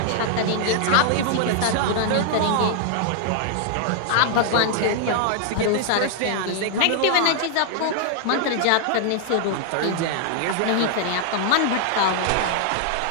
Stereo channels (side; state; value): both; different; correlation -0.01